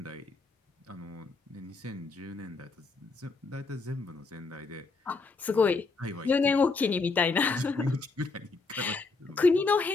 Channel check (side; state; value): right; quieter; 4.0 dB